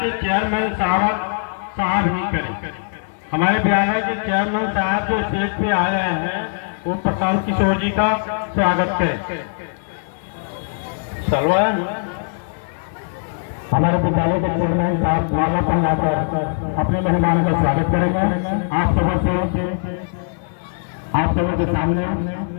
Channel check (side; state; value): right; silent; 65 dB below the other